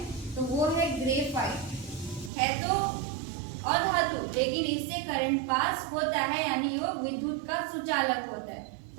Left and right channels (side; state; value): left; drops out; at 2.3 s